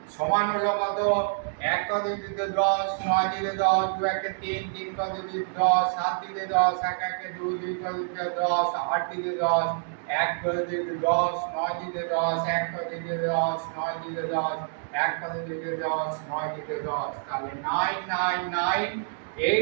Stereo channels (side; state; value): left; silent; digital silence